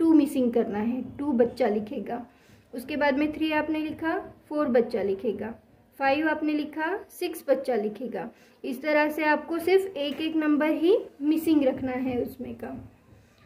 मिसिंग करना है, 2 बच्चा लिखेगा। उसके बाद में 3 आपने लिखा, 4 बच्चा लिखेगा। 5 आपने लिखा, 6 बच्चा लिखेगा। इस तरह से आपको सिर्फ एक नंबर ही मिसिंग रखना है उसमें का।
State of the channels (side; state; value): both; identical; correlation 1.00